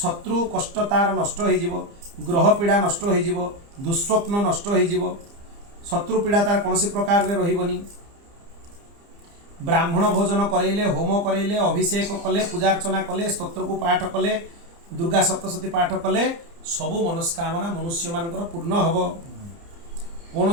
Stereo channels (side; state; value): left; late; 30 ms